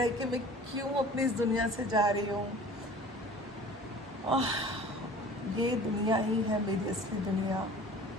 है कि मैं क्यों अपनी इस दुनिया से जा रही हूँ। ये दुनिया ही है मेरी असली दुनिया।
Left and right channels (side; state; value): both; normal; correlation 0.45